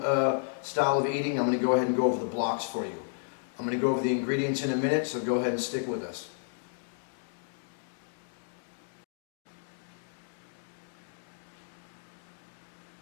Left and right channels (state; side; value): silent; right; digital silence